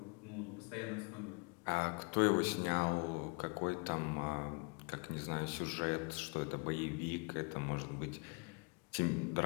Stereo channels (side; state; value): right; quieter; 32.6 dB